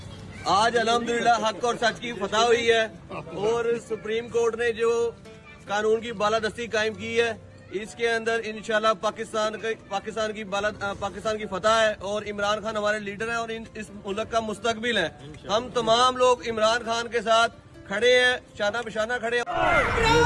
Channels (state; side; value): identical; both; correlation 1.00